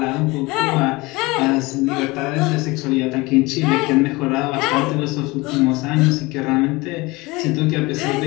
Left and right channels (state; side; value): quieter; right; 23.0 dB